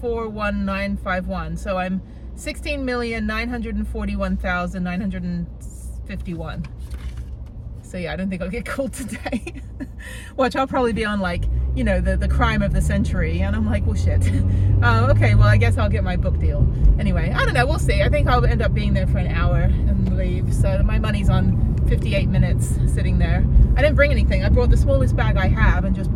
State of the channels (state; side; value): identical; both; correlation 1.00